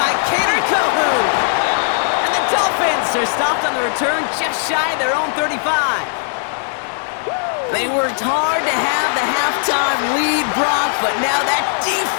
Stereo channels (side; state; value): right; silent; 65 dB below the other